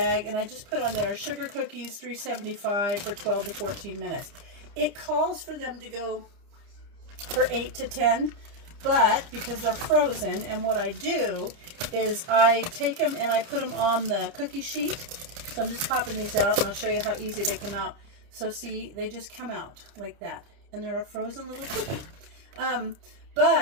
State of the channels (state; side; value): late; left; 30 ms